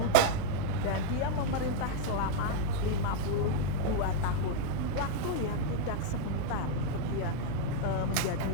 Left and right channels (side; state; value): both; different; correlation 0.00